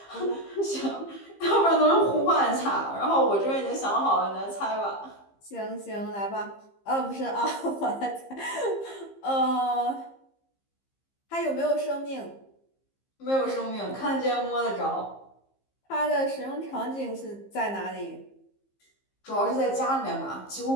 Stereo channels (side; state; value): right; late; 15 ms